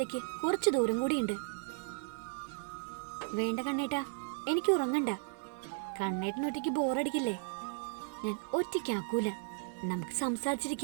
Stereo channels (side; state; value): left; silent; digital silence